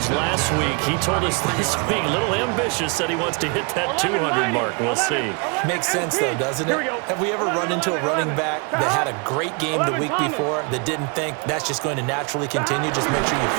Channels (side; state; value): left; quieter; 33.0 dB